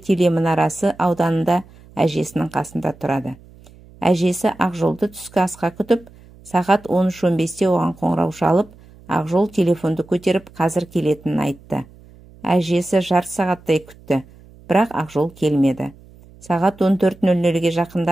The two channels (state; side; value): noise; right; hum, 24 dB below the sound